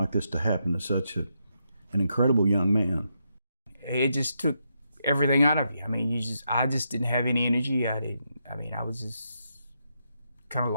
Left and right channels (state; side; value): inverted; both; correlation -0.82